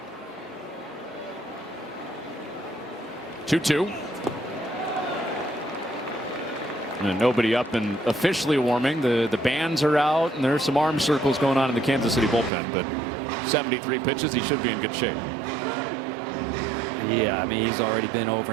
2-2. And nobody up and officially warming. The bands are out, and there's some arm circles going on in the Kansas City bullpen. But 73 pitches, he should be in good shape. Yeah, I mean, he's already been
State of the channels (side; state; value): left; drops out; at 12.5 s